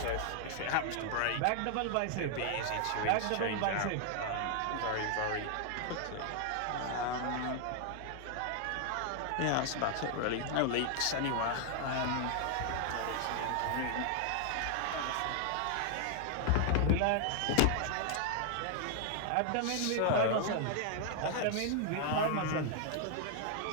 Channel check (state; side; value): different; both; correlation 0.00